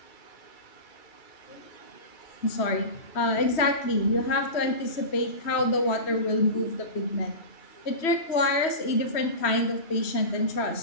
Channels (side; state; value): right; late; 3.1 ms